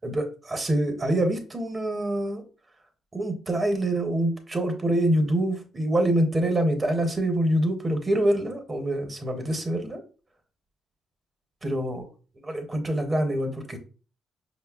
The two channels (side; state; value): both; normal; correlation 0.81